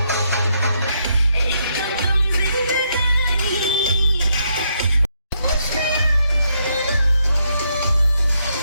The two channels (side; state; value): both; inverted; correlation -0.76